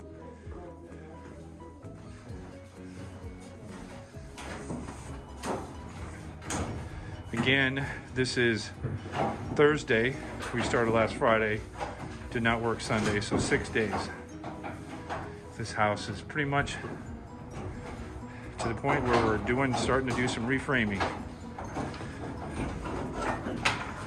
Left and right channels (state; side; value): identical; both; correlation 1.00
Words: Again, this is Thursday. We started last Friday. Did not work Sunday, so 6 days. This house is pretty much to the point where we're starting to do some reframing.